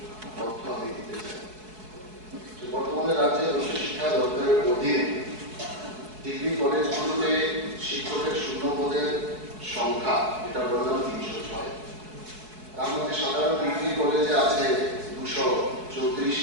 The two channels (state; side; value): late; left; 4.7 ms